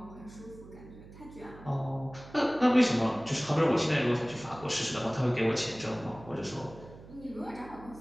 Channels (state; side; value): noise; right; hum, 18 dB below the sound